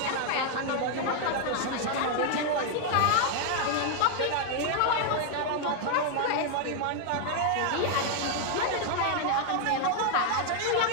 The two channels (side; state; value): both; different; correlation 0.00